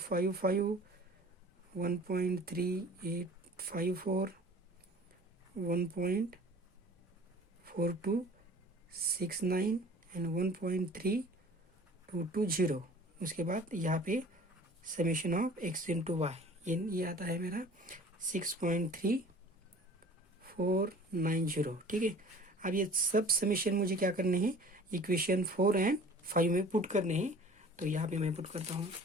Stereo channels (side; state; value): both; normal; correlation 0.46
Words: 1.3854, 1.4269 एंड 1.3220। उसके बाद यहाँ पे summation of x into y ये आता है मेरा 6.3490। ठीक है, अब ये सब समेशन मुझे क्या करने हैं, इक्वेशन 4 एंड 5 में पुट करने हैं। तो यहाँ पे मैं पुट करता हूँ।